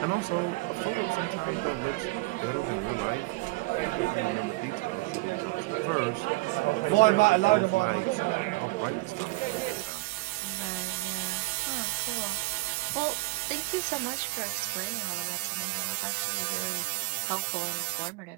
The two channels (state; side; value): quieter; left; 23.3 dB